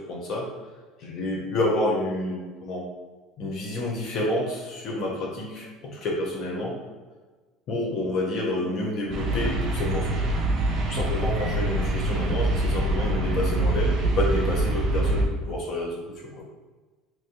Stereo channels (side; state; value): both; normal; correlation 0.49